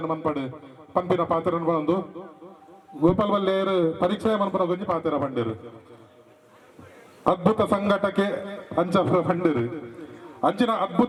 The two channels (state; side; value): identical; both; correlation 1.00